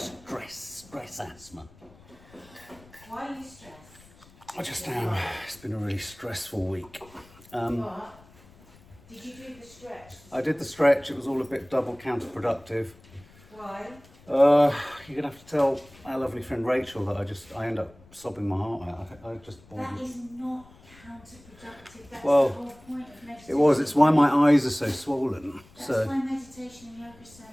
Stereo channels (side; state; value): left; noise; rumble, 25 dB below the sound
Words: asthma. Why are you stressed? I just am. It's been a really stressful week. What? Did you do the stretch? I did the stretch. It was all a bit double counterproductive. Why? You're gonna have to tell our lovely friend Rachel that I end up sobbing my heart out. I just. That is not counterproductive. That's Well, the whole point of meditation. It was. It's why my eyes are so swollen. That's why meditation and yoga is so